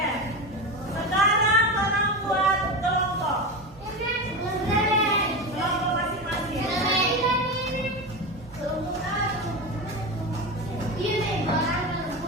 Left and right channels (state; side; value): normal; both; correlation 0.21